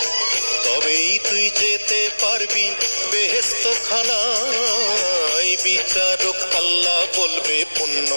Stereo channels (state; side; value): inverted; both; correlation -1.00